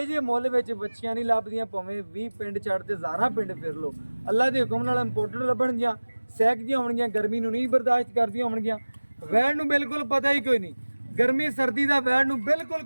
ਜੇ ਮੁੱਲ ਵਿੱਚ ਬੱਚੀਆਂ ਨਹੀਂ ਲੱਭਦੀਆਂ, ਭਾਵੇਂ 20 ਪਿੰਡ ਛੱਡ ਤੇ ਹਜ਼ਾਰਾਂ ਪਿੰਡ ਫਿਰ ਲੋ, ਅੱਲਾ ਦੇ ਹੁਕਮ ਨਾਲ ਇੰਪੋਰਟਡ ਲੱਭਣਗੀਆਂ, ਸਹਿਕਦੀਆਂ ਹੋਣਗੀਆਂ, ਗਰਮੀ ਨੂੰ ਨਹੀਂ ਬਰਦਾਸ਼ਤ ਕਰਦੀਆਂ ਹੋਣਗੀਆਂ। ਵੈੜ ਨੂੰ ਬਿਲਕੁਲ ਪਤਾ ਹੀ ਕੋਈ ਨਹੀਂ, ਗਰਮੀ ਸਰਦੀ ਦਾ ਵੈੜ ਨੂੰ ਬਿਲਕੁਲ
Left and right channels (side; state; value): both; inverted; correlation -1.00